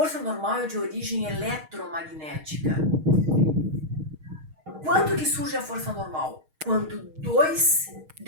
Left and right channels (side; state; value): left; late; 6.4 ms